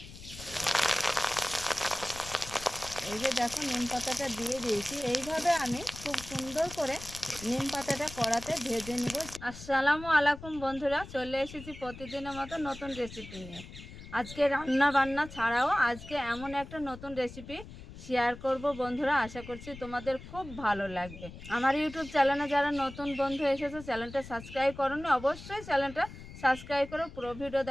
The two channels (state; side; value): noise; left; rumble, 14 dB below the sound